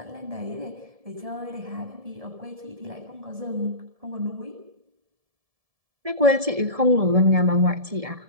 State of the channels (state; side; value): late; left; 1.7 ms